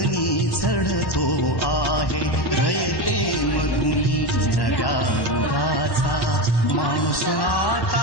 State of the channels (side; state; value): right; late; 1.1 ms